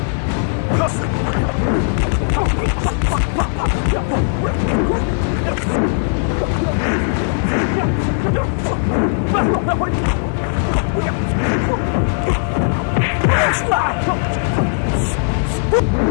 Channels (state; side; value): silent; right; 58 dB below the other